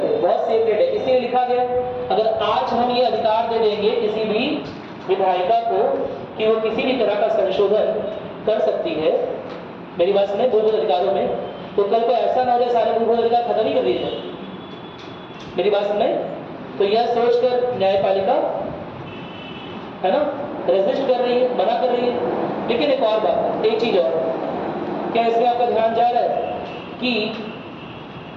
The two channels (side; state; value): both; identical; correlation 1.00